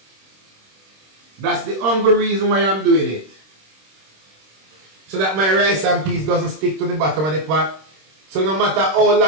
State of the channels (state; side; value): late; left; 26 ms